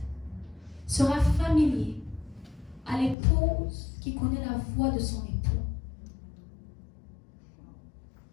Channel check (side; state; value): right; drops out; at 3.2 s